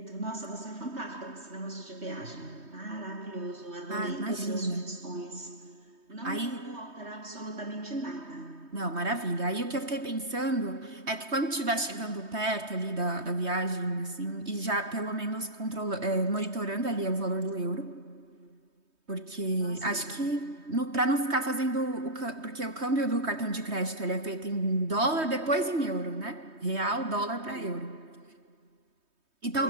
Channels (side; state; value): left; late; 3.2 ms